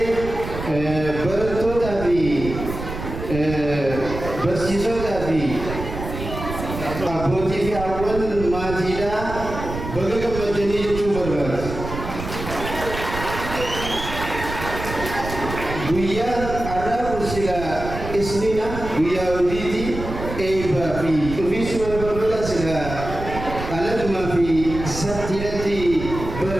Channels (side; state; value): right; noise; rumble, 8 dB below the sound